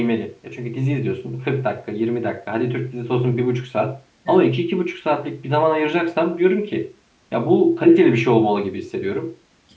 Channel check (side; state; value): both; identical; correlation 1.00